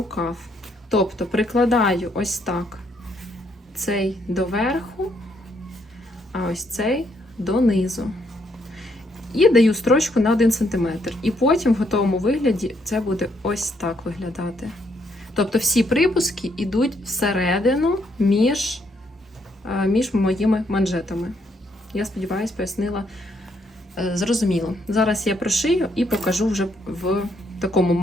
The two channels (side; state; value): both; normal; correlation 0.73